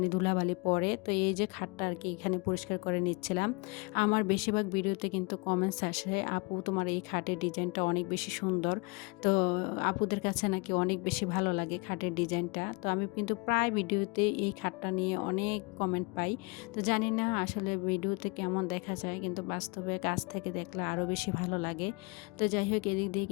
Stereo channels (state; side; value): quieter; right; 28.5 dB